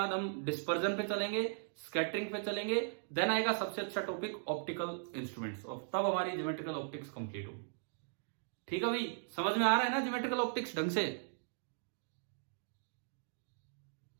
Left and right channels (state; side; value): silent; left; digital silence